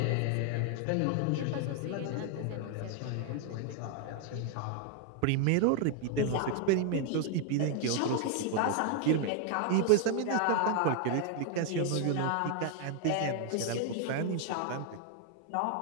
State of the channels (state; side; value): different; both; correlation 0.00